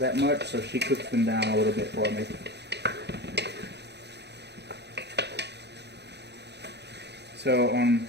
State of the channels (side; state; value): left; late; 0.49 ms